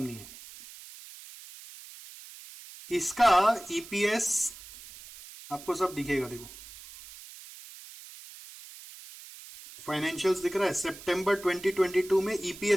है। इसका ईपीएस आपको सब दिखेगा, देखो फाइनेंशियल्स दिख रहा है। सितंबर 2022 में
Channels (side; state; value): right; noise; hiss, 17 dB below the sound